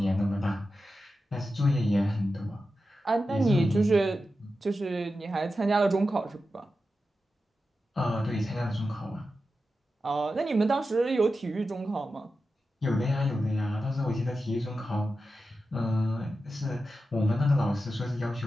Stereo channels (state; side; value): normal; both; correlation 0.91